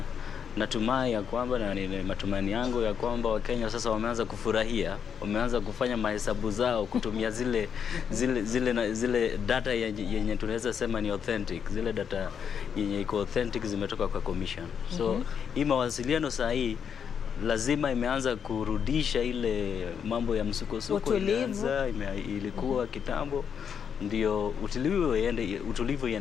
natumai ya kwamba, na ni matumaini yangu ya kwamba Wakenya sasa wameanza kufurahia, wameanza kufanya mahesabu zao kutumia zile data yenye tunaweza sema ni authentic, zile data yenye iko authentic zimetoka kwa commission. So hii mawasiliano saa hii lazima imeanza kurudisha ile mambo ya msukosuko ilikuwa kitambo, ndio utulivu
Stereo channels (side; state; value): right; quieter; 7.4 dB